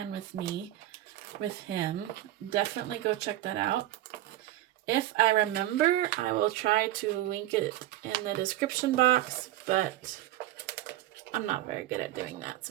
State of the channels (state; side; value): quieter; left; 14.6 dB